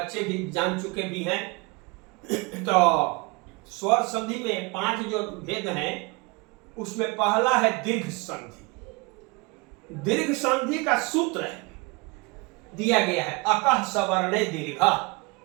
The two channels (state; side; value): quieter; left; 27.4 dB